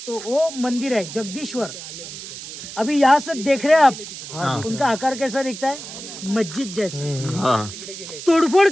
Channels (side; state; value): right; noise; hiss, 11 dB below the sound